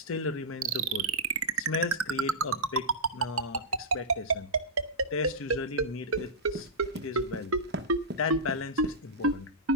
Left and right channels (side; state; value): both; normal; correlation -0.12